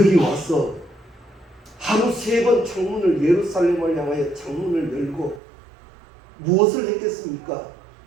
와서 하루 3번 창문을 예루살렘을 향하여 창문을 열고 무엇을 했겠습니까?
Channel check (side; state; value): left; drops out; at 5.4 s